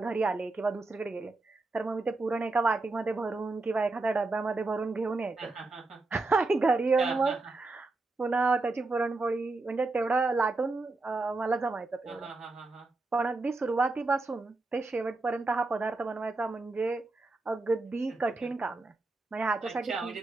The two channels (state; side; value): quieter; left; 3.3 dB